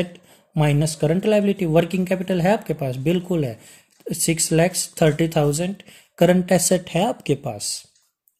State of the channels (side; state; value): both; identical; correlation 1.00